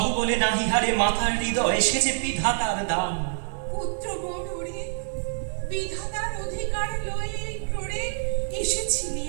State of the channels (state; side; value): silent; left; 61 dB below the other